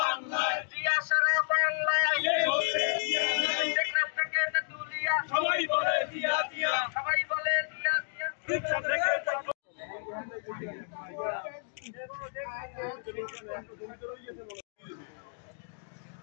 জিয়া সারা বাংলায়, টেকনাফ থেকে তেতুলিয়া সবাই বলে জিয়া জিয়া, সবাই বলে জিয়া জিয়া।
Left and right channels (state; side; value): silent; right; digital silence